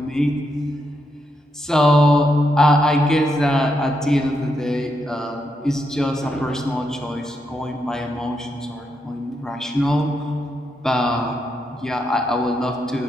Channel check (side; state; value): both; normal; correlation 0.81